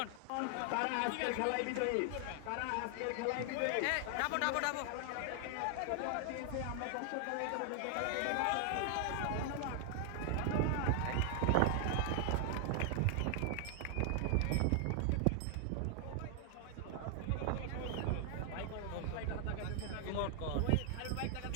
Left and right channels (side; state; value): both; different; correlation 0.00